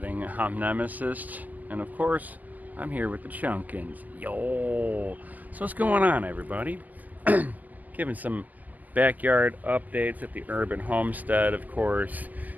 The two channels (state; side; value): late; left; 0.081 ms